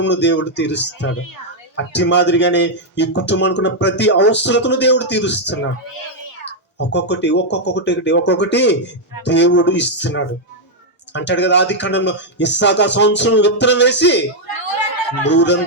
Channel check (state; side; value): normal; both; correlation -0.02